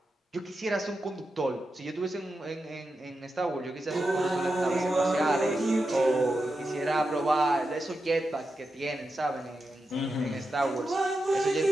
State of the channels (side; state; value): both; normal; correlation 0.89